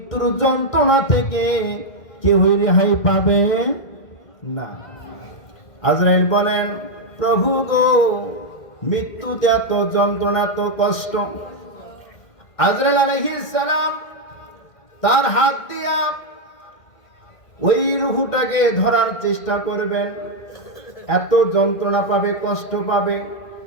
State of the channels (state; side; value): late; right; 2.1 ms